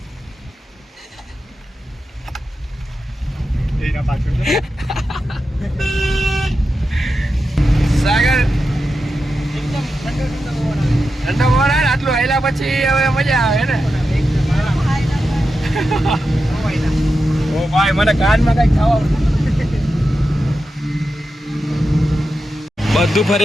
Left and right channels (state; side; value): normal; both; correlation 0.90